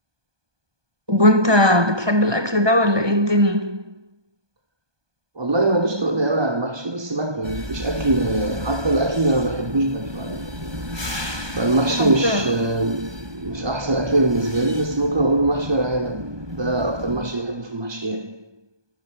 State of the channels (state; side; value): late; left; 1.2 ms